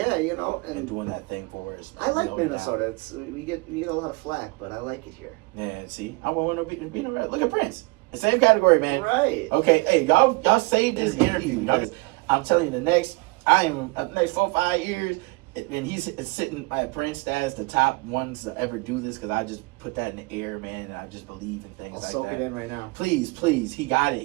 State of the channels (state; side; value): quieter; left; 25.8 dB